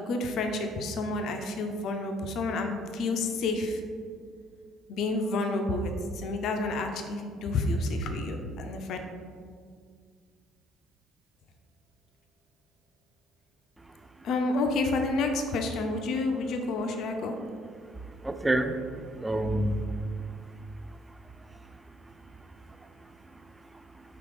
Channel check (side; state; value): both; normal; correlation 0.63